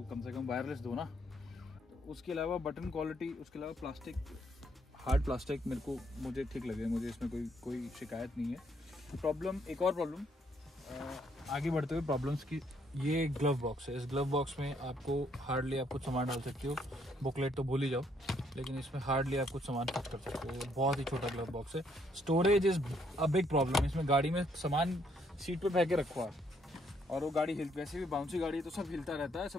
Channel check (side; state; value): both; normal; correlation 0.70